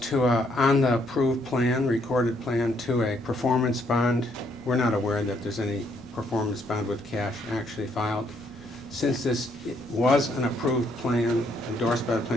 on the approved plan, recorded plan, to a performance bond. We're not aware that there's any performance bond with cash actually filed. Since this was an approved plan endorsed by the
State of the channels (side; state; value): both; normal; correlation 0.71